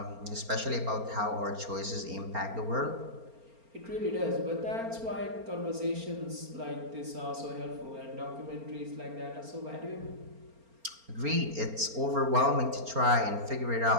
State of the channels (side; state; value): left; late; 4.3 ms